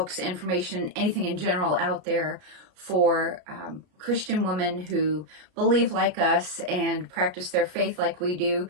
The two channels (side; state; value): left; late; 33 ms